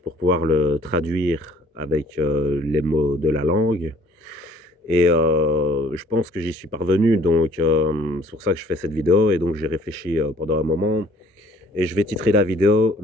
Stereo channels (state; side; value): normal; both; correlation 0.57